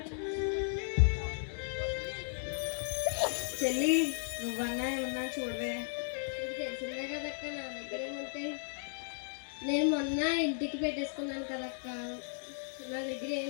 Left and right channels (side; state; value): right; silent; digital silence